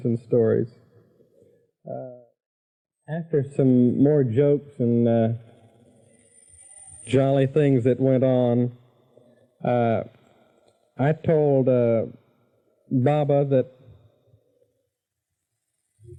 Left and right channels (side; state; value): both; identical; correlation 1.00